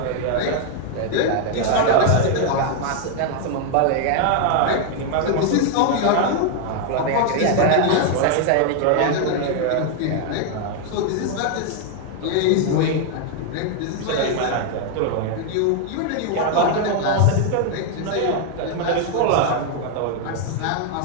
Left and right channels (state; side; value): different; both; correlation 0.00